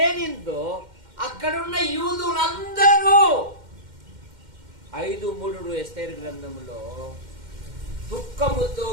అక్కడున్న యూదులందరూ 5:3 ఎస్తేరు గ్రంథంలో దుఃఖముతో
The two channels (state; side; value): late; left; 2.1 ms